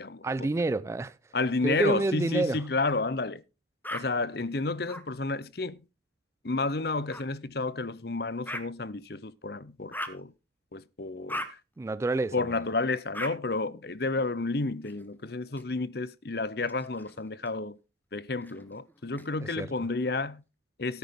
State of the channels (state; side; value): normal; both; correlation 0.28